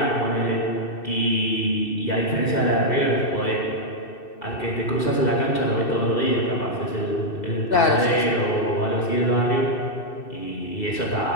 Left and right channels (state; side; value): late; right; 2.6 ms